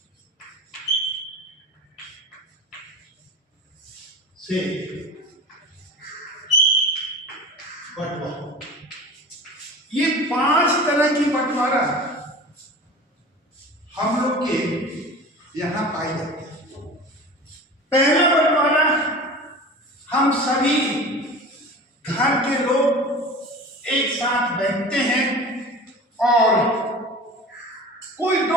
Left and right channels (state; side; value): normal; both; correlation 0.36